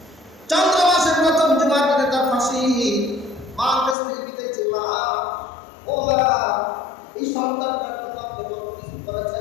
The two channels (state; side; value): drops out; right; at 4.0 s